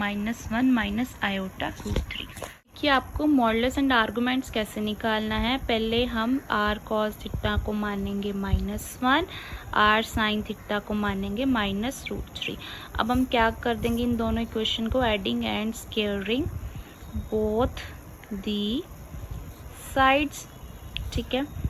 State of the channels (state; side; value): identical; both; correlation 1.00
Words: माइनस आयोटा √3 कि आपको मॉडुलस एंड आर्गुमेंट्स कैसे निकालना है। पहले हम r cos थीटा को मानेंगे -1, r sin थीटा को मानेंगे -√3। अब हम क्या कर देंगे, इन दोनों इक्वेशन को adding and squaring both the sides. ठीक है,